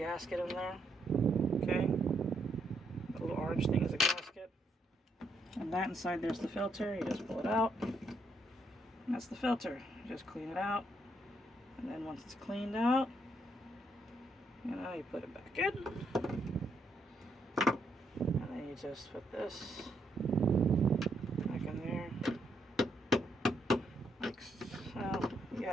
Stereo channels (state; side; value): normal; both; correlation 0.76